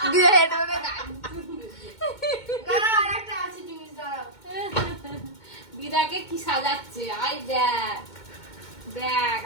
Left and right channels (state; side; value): late; right; 2.2 ms